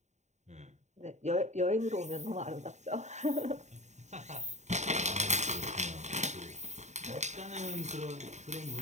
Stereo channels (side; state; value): left; late; 0.34 ms